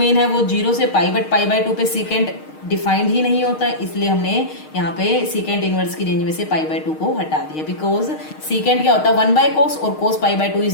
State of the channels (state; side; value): late; right; 6.5 ms